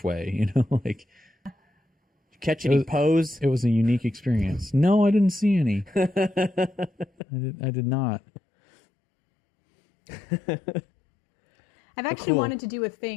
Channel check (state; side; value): drops out; right; at 7.1 s